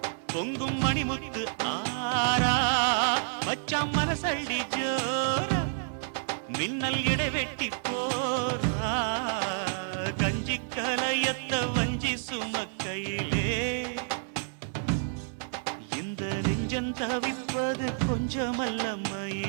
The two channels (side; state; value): left; silent; digital silence